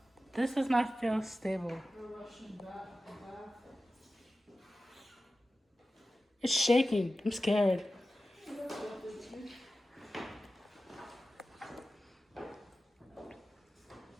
This does not feel stable. It's shaking. I'm scared.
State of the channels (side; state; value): both; normal; correlation 0.94